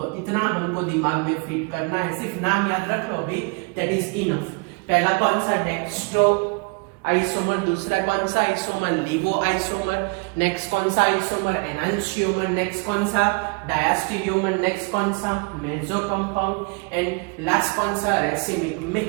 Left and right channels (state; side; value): quieter; left; 31.7 dB